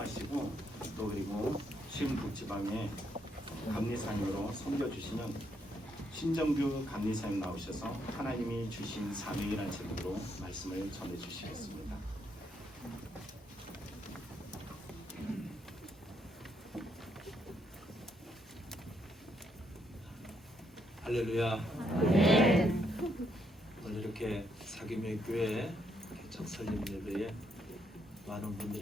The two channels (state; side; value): normal; both; correlation 0.75